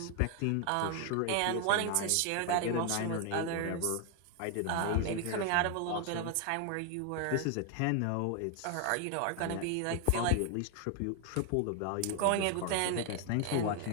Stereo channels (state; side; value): different; both; correlation 0.00